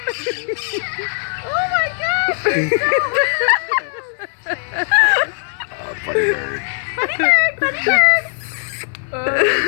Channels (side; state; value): right; silent; 58 dB below the other